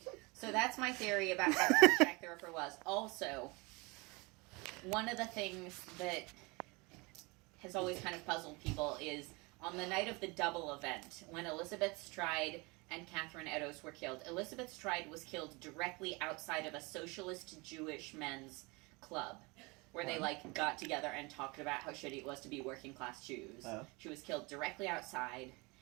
So that's my theory about how Jack the Ripper was. Also, one of the things that has always kind of puzzled people is on the night of the double event, when Elizabeth Stride and Catherine Eddowes were killed. Elizabeth Stride was killed directly outside of a socialist Jewish men's club, where they like got together and talked about how shitty it was to be working class Jews. Oh. She was killed directly outside,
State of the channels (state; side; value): quieter; left; 26.7 dB